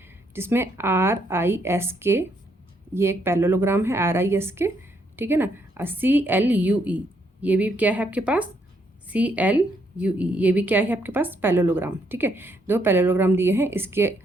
जिसमें RISK ये एक पैरेललोग्राम है RISK, ठीक है ना। CLUE ये भी क्या है आपके पास, CLUE ये भी क्या है आपके पास, पैरेललोग्राम। ठीक है, दो पैरेललोग्राम दिए हैं।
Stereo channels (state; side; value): normal; both; correlation 0.73